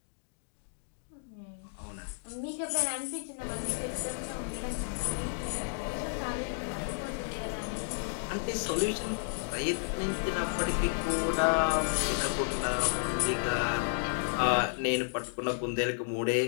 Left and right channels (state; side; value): silent; right; digital silence